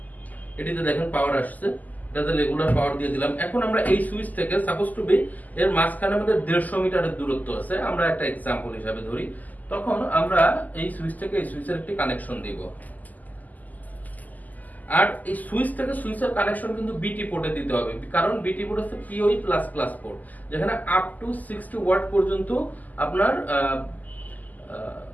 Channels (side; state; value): right; late; 0.081 ms